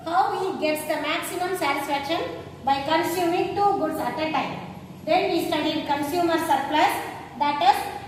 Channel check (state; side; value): identical; both; correlation 1.00